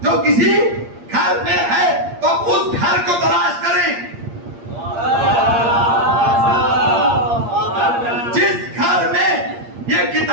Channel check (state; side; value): late; left; 8.6 ms